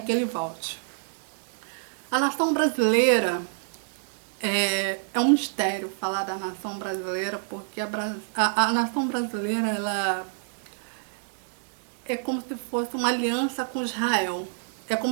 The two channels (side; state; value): left; silent; digital silence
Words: que ele volte. A nação brasileira é um mistério falar da nação brasileira, porque a nação brasileira ela é como se fosse uma aliança com Israel. É